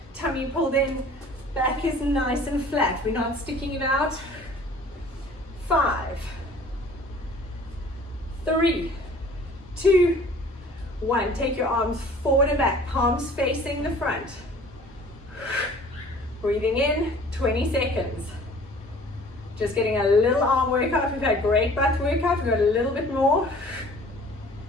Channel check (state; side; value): normal; both; correlation 0.50